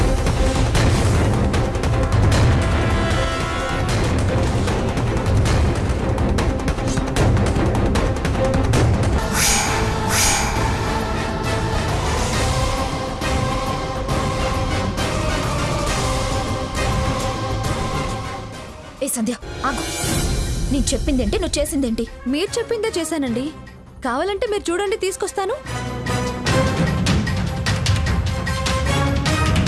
ఏ సంధ్య ఆగు, నేను చెప్పిందేంటి, నువ్వు చేసిందేంటి? మీరు చెప్పిందే చేశానండి. కావాలంటే మీరు చూడండి, తీసుకొస్తాను.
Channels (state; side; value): identical; both; correlation 1.00